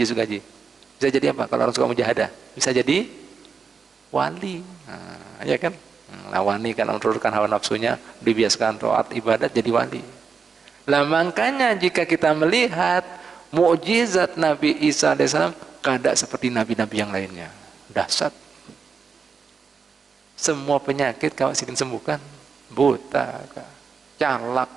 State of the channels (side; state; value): left; quieter; 5.6 dB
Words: Sugaji? Bisa jadi apa kalau orang suka mujahadah? Bisa jadi wali. Ya kan? Nah, wali kan menurunkan hawa nafsunya, dibiasakan taat ibadat jadi wali. Lah makanya jika kita melihat mukjizat Nabi Isa alaihissalam, kada seperti nabi-nabi yang lainnya. Dahsyat. Semua penyakit kau Sidin sembuhkan. Buta kah, calak